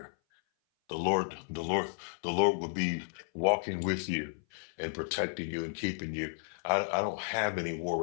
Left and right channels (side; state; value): right; silent; 56 dB below the other